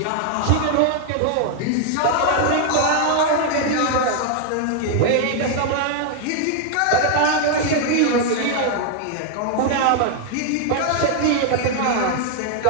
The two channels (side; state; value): both; different; correlation 0.00